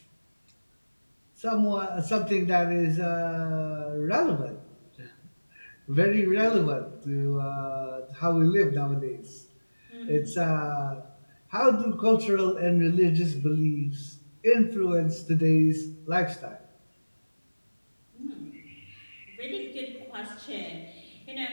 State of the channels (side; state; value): both; inverted; correlation -1.00